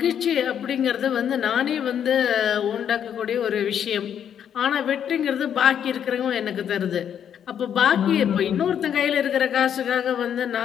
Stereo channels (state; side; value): quieter; right; 8.9 dB